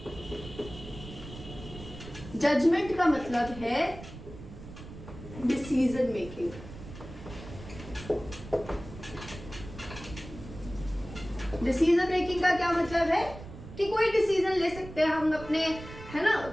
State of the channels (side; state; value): right; noise; rumble, 14 dB below the sound